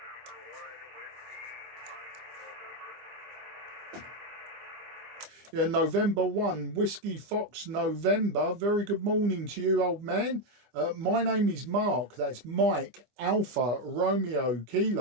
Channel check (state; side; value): late; left; 25 ms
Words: Yeah, November 1, Whiskey Fox November. Very good morning to you, old man. My name is Mark. That's Mike Alpha Romeo